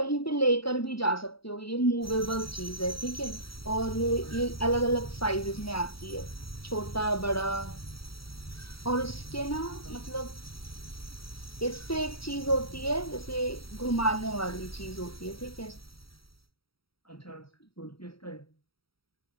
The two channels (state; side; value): late; right; 0.75 ms